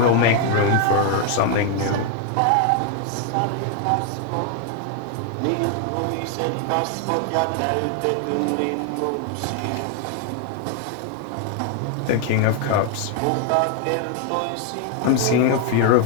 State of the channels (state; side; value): different; both; correlation 0.00